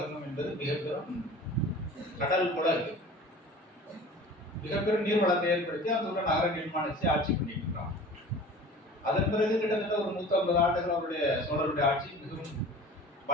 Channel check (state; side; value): normal; both; correlation 0.42